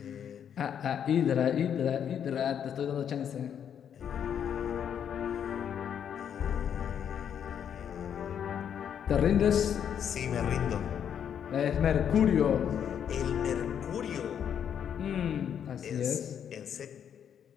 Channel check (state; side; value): quieter; right; 8.6 dB